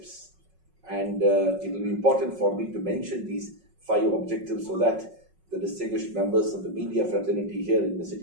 And it will be important for me to mention these 5 objectives so that the distinguished members of the media fraternity here in the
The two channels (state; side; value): late; left; 5.4 ms